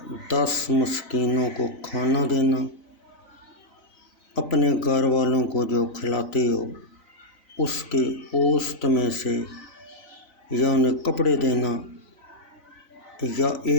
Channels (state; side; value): late; right; 4.0 ms